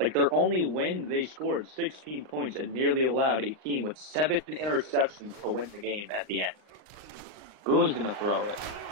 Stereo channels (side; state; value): left; late; 39 ms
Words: their only win, they scored 16 points and nearly allowed a team with 7 interceptions to win the game at the end. Boone's going to throw it.